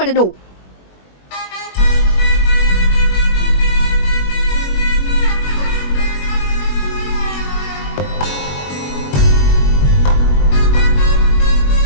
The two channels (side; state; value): right; late; 21 ms